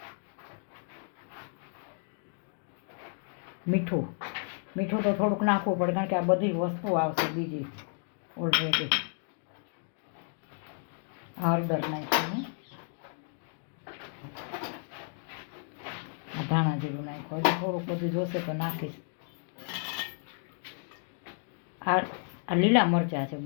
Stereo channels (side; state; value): right; silent; 56 dB below the other